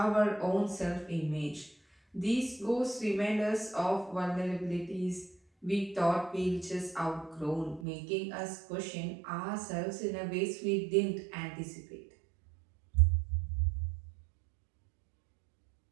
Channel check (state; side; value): drops out; left; at 7.9 s